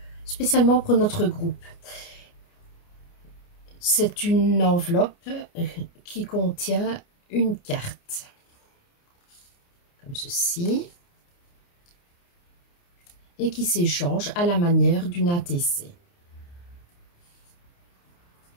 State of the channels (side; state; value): right; late; 29 ms